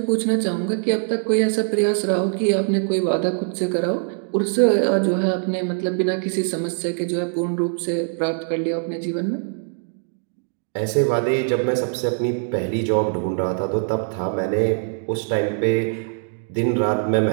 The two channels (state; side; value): silent; left; 60 dB below the other